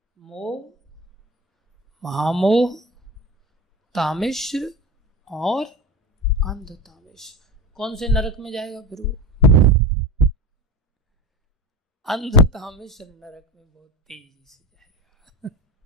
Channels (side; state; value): both; normal; correlation 0.28